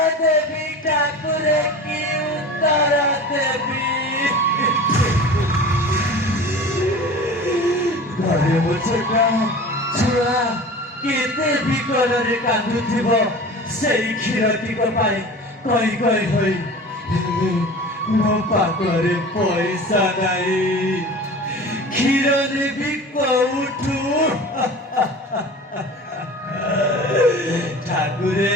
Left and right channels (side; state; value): both; normal; correlation 0.37